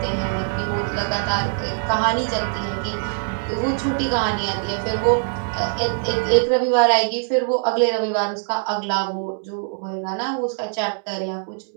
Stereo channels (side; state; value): left; silent; 60 dB below the other